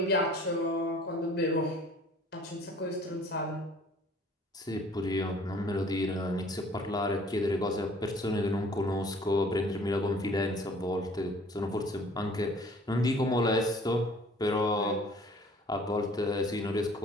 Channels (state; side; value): normal; both; correlation 0.53